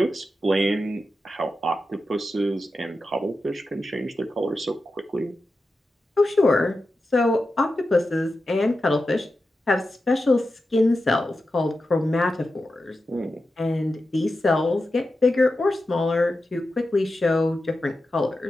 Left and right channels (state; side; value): normal; both; correlation 0.91